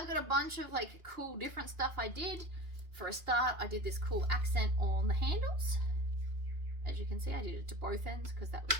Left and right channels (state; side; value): late; left; 2.8 ms